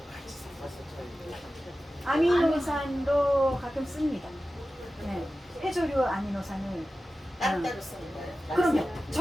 아미노산도 가끔 씁니다. 네. 해조류 아미노산을 따로따로 쓰는 거예요. 그럼요.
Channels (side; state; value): both; normal; correlation 0.94